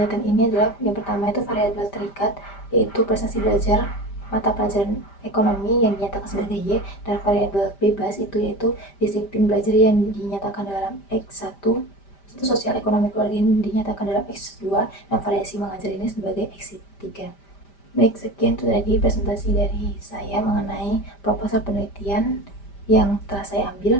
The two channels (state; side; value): late; right; 5.1 ms